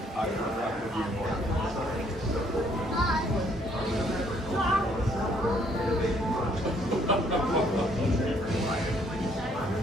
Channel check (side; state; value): both; normal; correlation 0.65